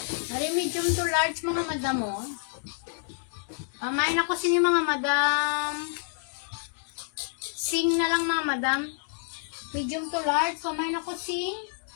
Ari medium to large mga madam mo. Pamain ako sini mga madam. Sing na lang mga madam. Medium to large. Pamain ako sing.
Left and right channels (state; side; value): silent; right; 59 dB below the other